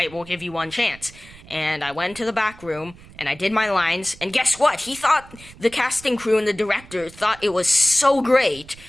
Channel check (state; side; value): noise; right; rumble, 21 dB below the sound